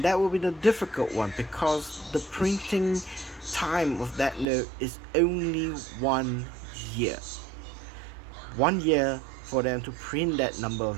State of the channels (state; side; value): drops out; left; at 4.5 s